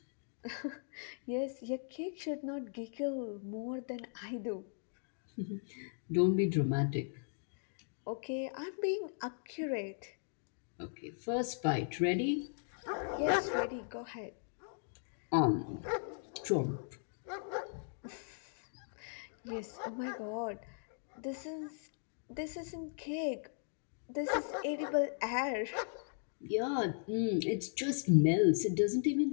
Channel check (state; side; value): silent; right; digital silence